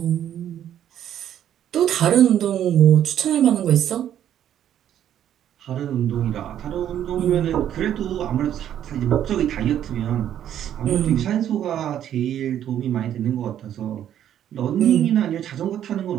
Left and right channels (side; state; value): left; quieter; 10.6 dB